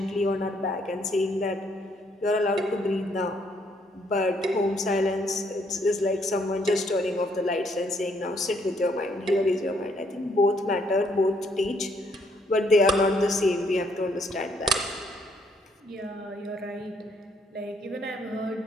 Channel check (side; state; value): both; normal; correlation 0.69